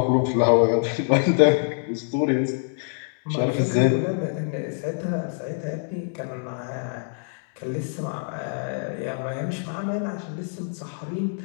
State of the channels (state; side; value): silent; right; digital silence